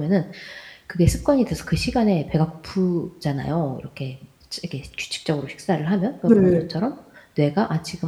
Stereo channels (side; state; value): both; identical; correlation 1.00